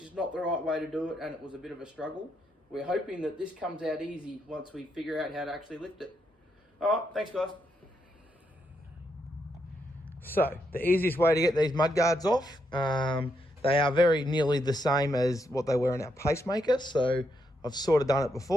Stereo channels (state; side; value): normal; both; correlation 0.80